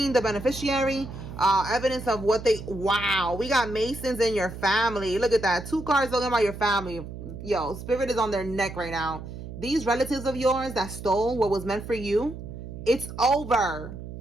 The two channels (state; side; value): noise; right; hum, 11 dB below the sound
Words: the beneficiary. Evidence of what they. Wow, we got Masons in your family. Look at that. 2 cards talking about your family. Yo, Spirit is on their neck right now. These relatives of yours that stole what was meant for you, it's over.